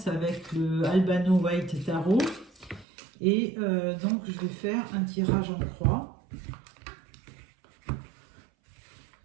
avec le Albano White Tarot. Et donc je vais faire un tirage en croix.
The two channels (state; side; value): drops out; left; at 2.9 s